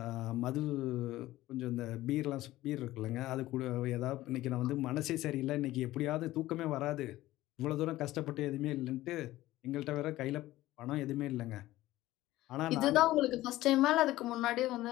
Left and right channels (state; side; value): quieter; right; 16.3 dB